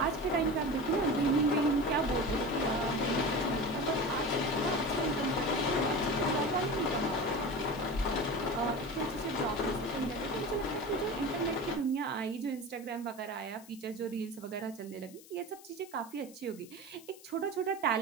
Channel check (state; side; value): noise; left; hiss, 21 dB below the sound